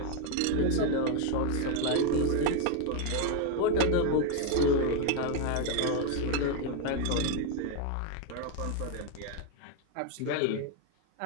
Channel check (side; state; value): both; different; correlation 0.01